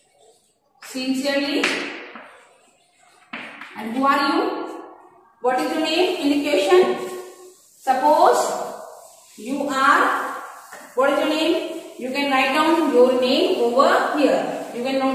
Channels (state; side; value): identical; both; correlation 1.00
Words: sincerely. And who are you? What is your name in the question? Suppose you are, what is your name? You can write down your name over here. You can